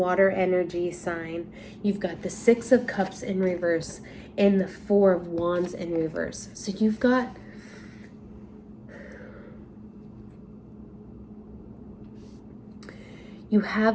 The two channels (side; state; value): both; identical; correlation 1.00